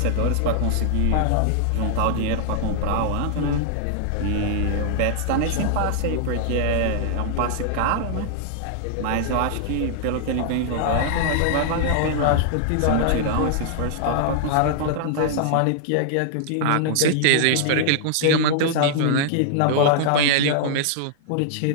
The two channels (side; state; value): both; different; correlation -0.01